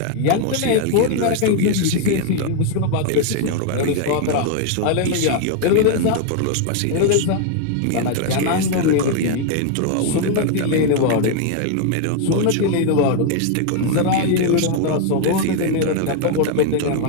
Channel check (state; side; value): different; both; correlation 0.00